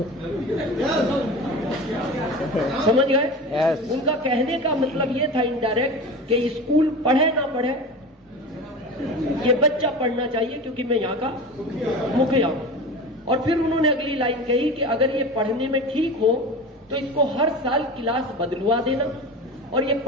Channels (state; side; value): normal; both; correlation 0.31